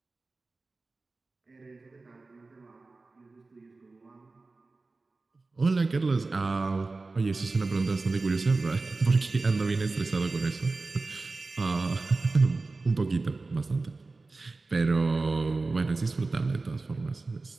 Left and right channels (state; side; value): quieter; left; 3.6 dB